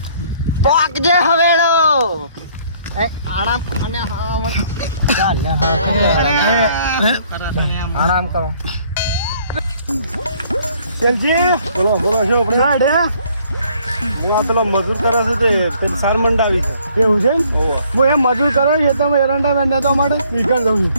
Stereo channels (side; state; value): both; inverted; correlation -0.62